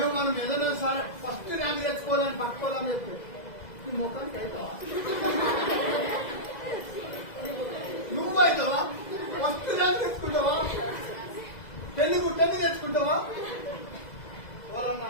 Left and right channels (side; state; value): right; late; 2.0 ms